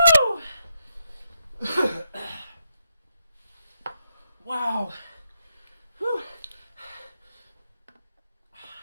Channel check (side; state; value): both; inverted; correlation -0.83